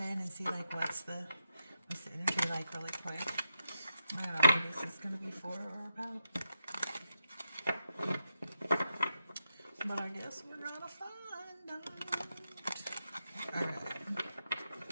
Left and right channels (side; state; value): both; inverted; correlation -0.85